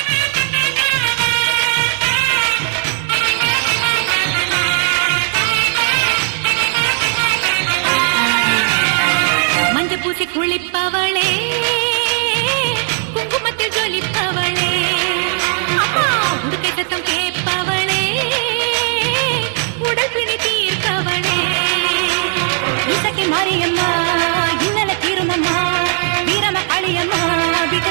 மஞ்ச பூசி குளிப்பவளே குங்குமத்தில் ஜொலிப்பவளே அம்மா உடுக்கை சத்தம் கேட்பவளே உடல் பிணி தீர்ப்பவளே இசக்கி மாரியம்மா இன்னல தீருமம்மா வீரம காளியம்மா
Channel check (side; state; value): left; silent; 60 dB below the other